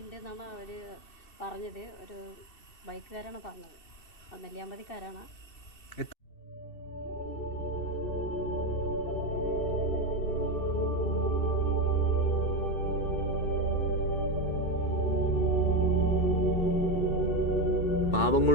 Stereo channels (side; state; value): right; late; 2.6 ms